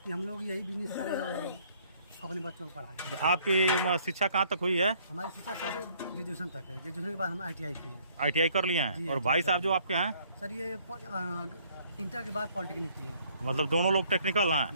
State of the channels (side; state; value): both; inverted; correlation -0.61